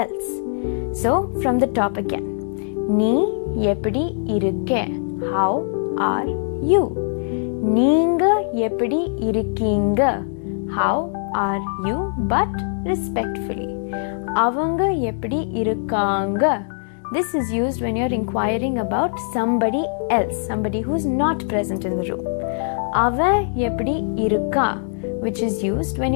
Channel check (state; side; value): silent; right; digital silence